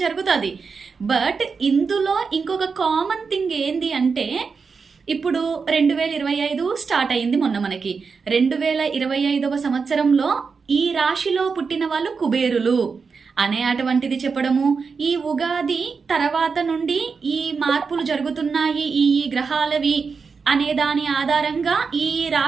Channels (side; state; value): left; quieter; 5.2 dB